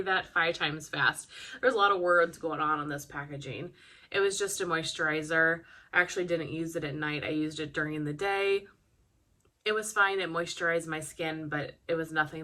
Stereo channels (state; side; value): identical; both; correlation 1.00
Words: that 5 times fast. There's a lot of words going on this packaging. It was just a moisturizer. I actually didn't use it at night. I used it during the day. It was fine. It moisturized my skin, but it was